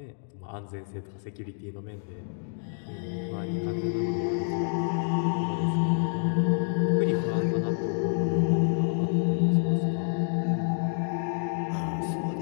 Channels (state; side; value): silent; right; digital silence